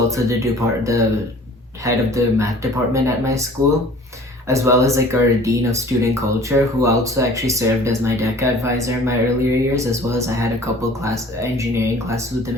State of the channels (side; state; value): both; normal; correlation 0.48